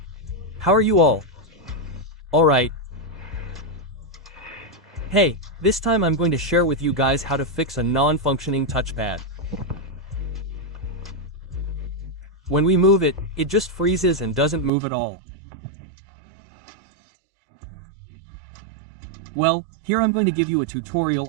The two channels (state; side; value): drops out; left; at 14.7 s